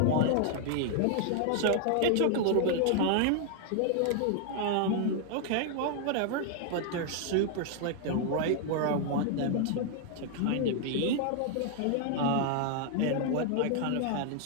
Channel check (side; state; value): both; different; correlation 0.00